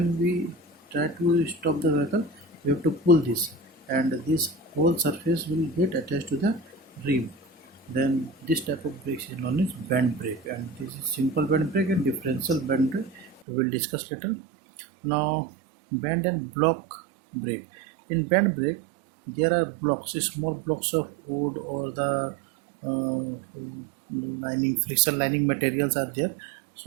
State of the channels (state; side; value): drops out; left; at 13.4 s